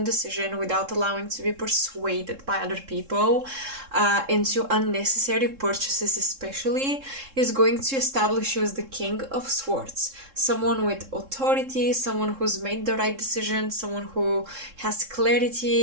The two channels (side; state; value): left; late; 3.7 ms